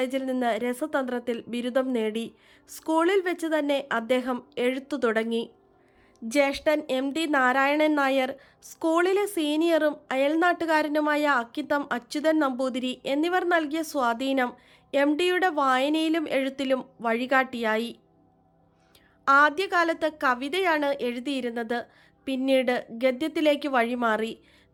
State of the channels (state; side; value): identical; both; correlation 1.00